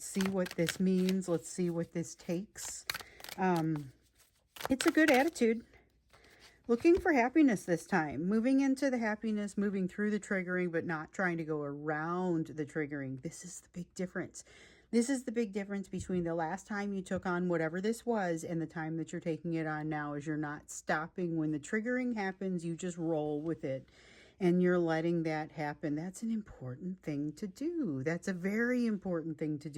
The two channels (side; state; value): both; identical; correlation 1.00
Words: see what this means. Let's see what this takes. It's a good attitude. Looking for happiness this time. Moving into the happiness, moving through the triggering, but not trying to go around the triggering. This is the big difference. This is the big difference between the last time you took on whatever this was and the time that you're taking it on now, is you're not stopping when the triggering happens. You just roll with it. and you're letting that happen. That's an important thing to do. That's a very important thing to